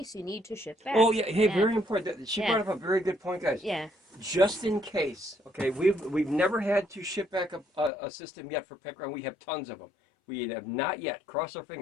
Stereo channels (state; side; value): drops out; right; at 7.9 s